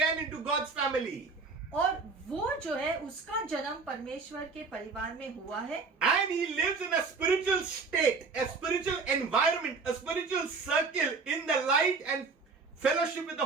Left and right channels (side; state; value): left; quieter; 4.5 dB